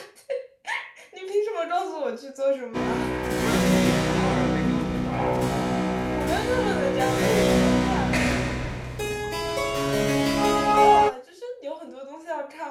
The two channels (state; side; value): identical; both; correlation 1.00